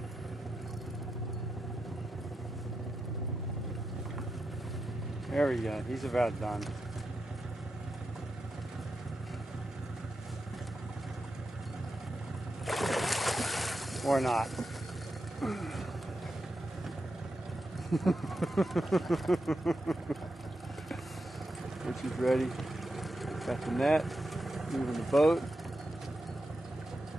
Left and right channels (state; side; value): normal; both; correlation 0.88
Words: There we go. He's about done. Or not. Richie's ready. Got the net. Moving the boat.